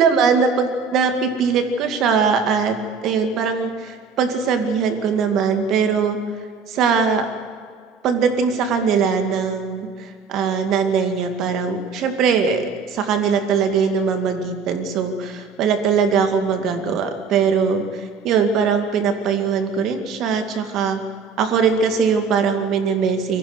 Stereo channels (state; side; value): quieter; left; 5.5 dB